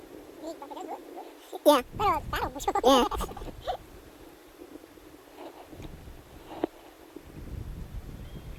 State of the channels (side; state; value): both; identical; correlation 1.00